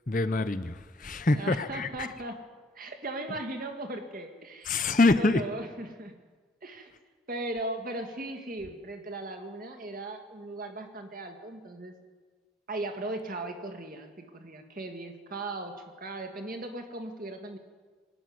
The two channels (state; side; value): normal; both; correlation 0.59